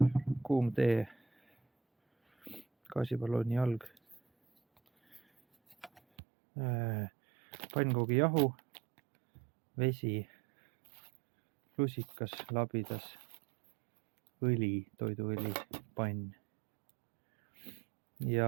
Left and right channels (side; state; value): left; drops out; at 6.0 s